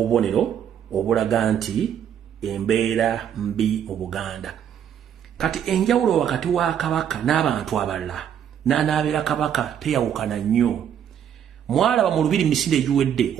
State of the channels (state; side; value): quieter; left; 9.1 dB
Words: obulaga nti embeera mbi mu Buganda. Kati enjawulo wakati wa Kabaka n'abantu abalala n'anaabera Kabaka teyawukana nnyo. Mwalaba mu Lubiri misinde egiwedde